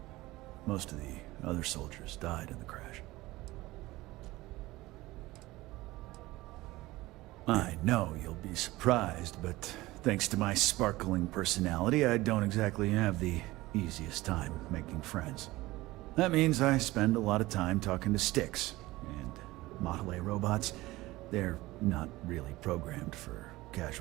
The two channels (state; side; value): quieter; left; 19.0 dB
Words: Most of the other soldiers died in the crash. I know you'll be surprised, but thanks to my sparkling personality, I don't exactly have the easiest time making friends. That means I spend a lot of time talking to Styx, and Model A robots, they're not really programmed for